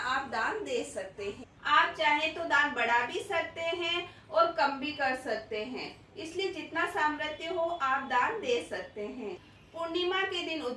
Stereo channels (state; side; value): identical; both; correlation 1.00